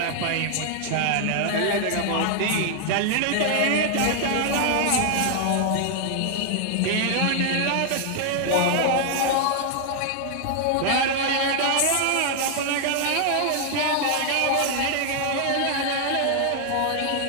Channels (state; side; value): different; both; correlation 0.00